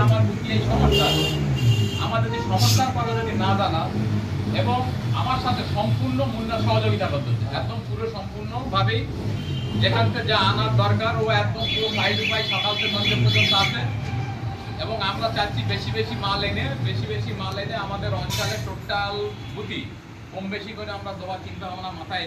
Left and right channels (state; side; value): identical; both; correlation 1.00